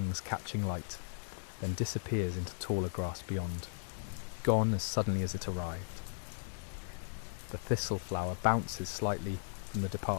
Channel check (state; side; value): silent; right; digital silence